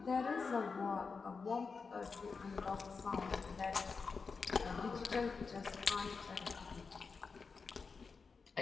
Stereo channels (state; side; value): quieter; right; 4.9 dB